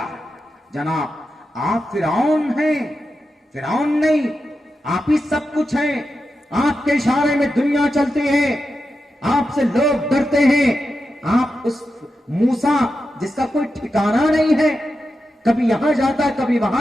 جناب آپ فرعون ہیں، فرعون نہیں، آپ ہی سب کچھ ہیں. آپ کے اشارے میں دنیا چلتی ہے، آپ سے لوگ ڈرتے ہیں. آپ اس موسیٰ جس کا کوئی ٹھکانہ نہیں ہے، کبھی یہاں جاتا ہے کبھی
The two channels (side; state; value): both; normal; correlation 0.89